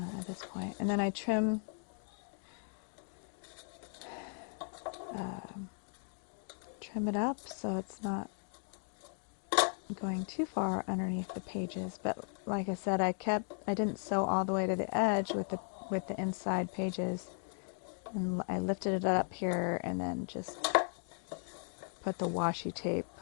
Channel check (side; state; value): right; silent; 53 dB below the other